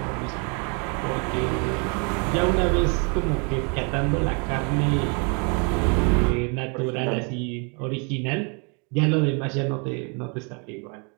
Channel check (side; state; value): left; quieter; 35.2 dB